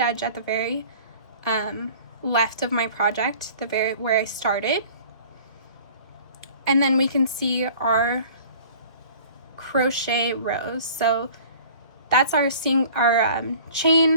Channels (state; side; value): inverted; both; correlation -0.47